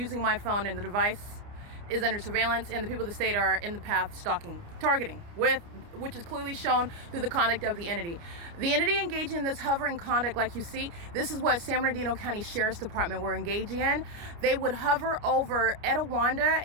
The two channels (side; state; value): left; late; 29 ms